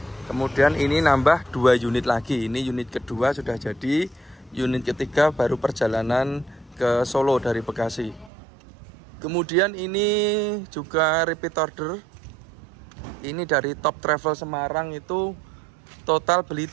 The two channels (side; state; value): left; drops out; at 8.3 s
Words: Kemudian ini nambah 2 unit lagi. Ini unit kedua sudah jadi. Unit ketiga baru perjalanan ke Solo dari Bekasi. Kemudian ini juga repeat order. Ini dari Top Travel Semarang, itu total beli